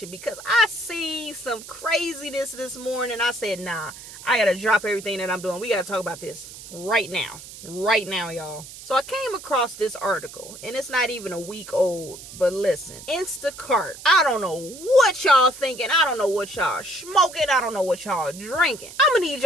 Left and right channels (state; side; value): noise; right; hiss, 15 dB below the sound